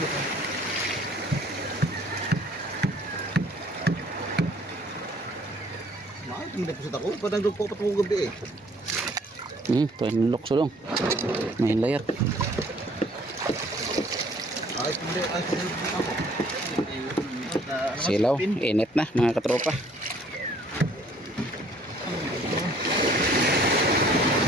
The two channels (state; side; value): normal; both; correlation 0.59